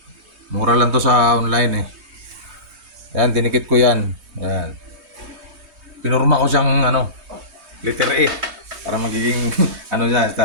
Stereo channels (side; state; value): left; late; 3.2 ms